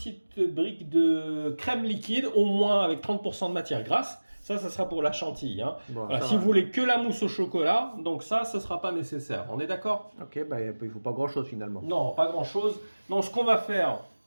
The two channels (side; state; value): both; inverted; correlation -1.00